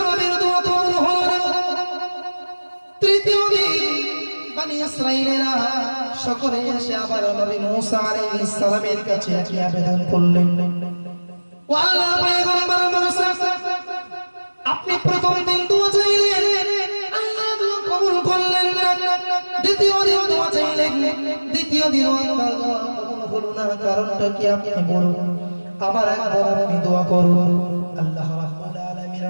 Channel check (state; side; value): inverted; both; correlation -1.00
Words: নবীর দোয়া কবুল হলো না। তৃতীয় দিন বনি ইসরাঈলেরা সকলে এসে আবার নবী মুসা আলাইহিস সালামের কাছে একই আবেদন করলেন। ও আল্লাহর পয়গম্বর মুসা, আপনি প্রথম দিন দোয়া চাইলেন, আল্লাহ দোয়া কবুল করলেন না। দ্বিতীয় দিন দোয়া চাইলেন, দ্বিতীয় দিন আল্লাহ দোয়া কবুল হলো না। কারণটা কি আপনি বলুন, আবার একবার আপনি দোয়া করুন। আল্লাহ রাব্বুল